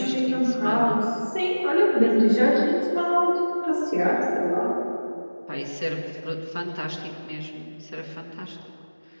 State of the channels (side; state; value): both; inverted; correlation -1.00